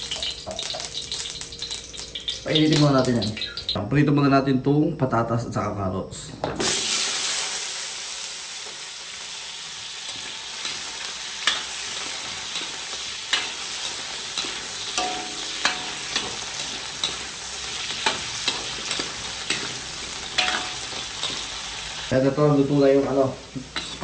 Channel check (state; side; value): identical; both; correlation 1.00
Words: Painitin muna natin yan. Prito muna natin itong patatas at saka carrots. Kaya ito, luto na yung